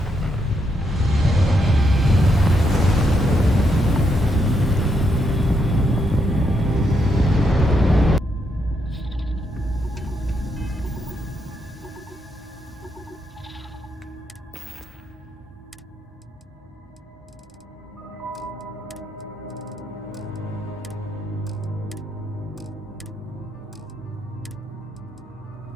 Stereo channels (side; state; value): both; normal; correlation 0.79